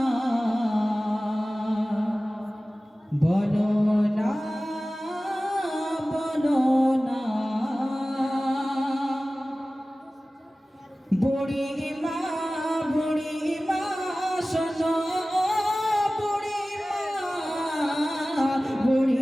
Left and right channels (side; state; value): both; normal; correlation 0.97